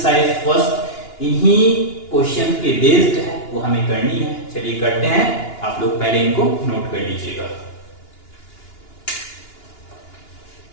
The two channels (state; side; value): late; right; 2.9 ms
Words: फर्स्ट इन्हीं क्वेश्चन के बेस्ड है, वो हमें करनी है। चलिए करते हैं, आप लोग पहले इनको नोट कर लीजिएगा।